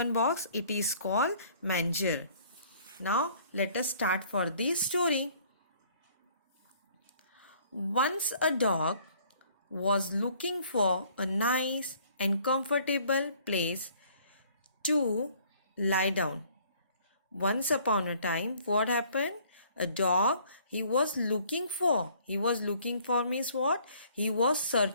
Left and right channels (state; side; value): inverted; both; correlation -0.58